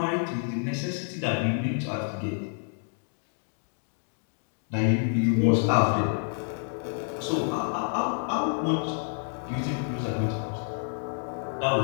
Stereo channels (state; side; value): silent; right; 59 dB below the other